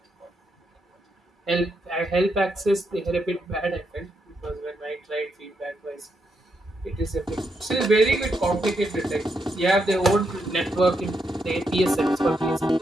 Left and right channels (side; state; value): both; normal; correlation 0.81